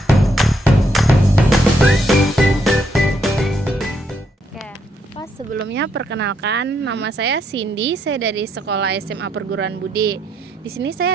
Oke, Pak, sebelumnya perkenalkan nama saya Cindy, saya dari Sekolah SMA Perguruan Budi. Di sini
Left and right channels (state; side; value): normal; both; correlation 0.75